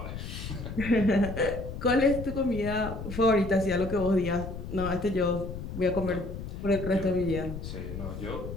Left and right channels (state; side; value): noise; left; rumble, 8 dB below the sound